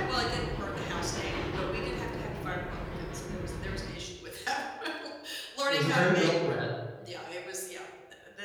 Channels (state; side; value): identical; both; correlation 1.00